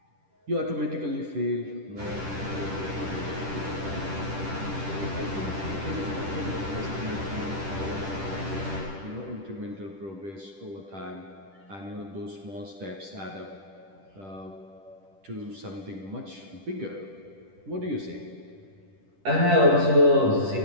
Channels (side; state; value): left; late; 10 ms